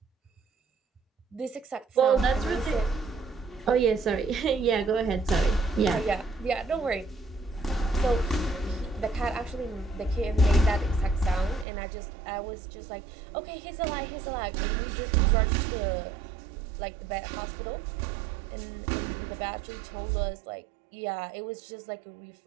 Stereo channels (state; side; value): drops out; left; at 11.7 s